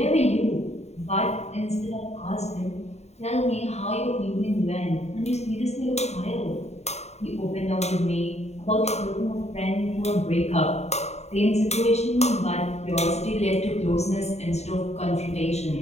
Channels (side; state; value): right; late; 0.32 ms